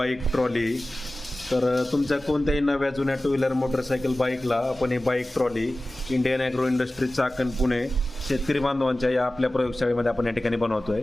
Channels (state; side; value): normal; both; correlation 0.96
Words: trolley. तुमच्या कोणत्याही नव्या जुन्या टू व्हीलर मोटरसायकल बाईकला आपण ही bike trolley Indian agro industry Chakan Pune शेतकरी बांधवांच्या या आपल्या प्रयोगशाळेमध्ये आपण या ठिकाणी बनवतोय.